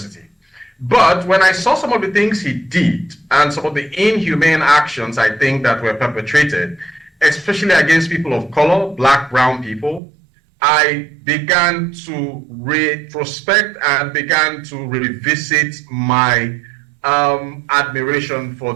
But when I saw some of the things he did and some of the inhumane actions I think that were perpetrated, especially against people of color, black, brown people, I began to retrospect and began to revisit my admiration for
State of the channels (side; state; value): left; drops out; at 10.0 s